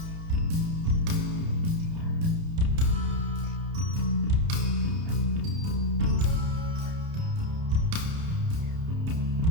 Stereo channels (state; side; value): late; left; 30 ms